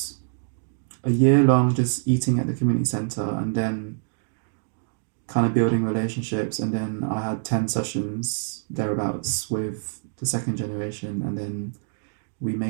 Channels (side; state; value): left; silent; digital silence